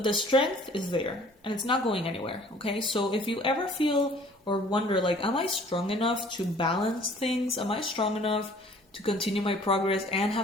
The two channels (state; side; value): normal; both; correlation 0.53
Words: the strength is there and it's not going anywhere, okay? So if you ever feel or wonder, like, am I strong enough to balance things? Am I strong enough to continue my progress and